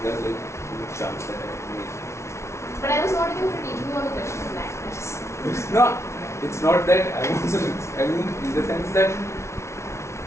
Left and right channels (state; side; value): late; right; 0.13 ms